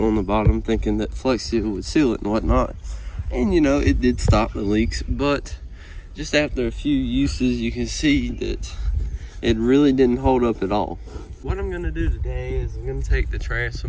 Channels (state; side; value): identical; both; correlation 1.00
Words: on the bottom, thinking that Flex Seal would seal it and whatnot. And you know, it did stop the leaks, but just after a few uses, you can see that it really didn't hold up at all. What I'm gonna do today is I'm gonna take the